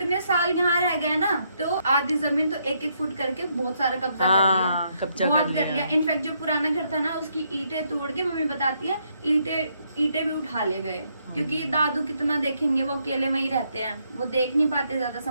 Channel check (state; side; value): inverted; both; correlation -0.75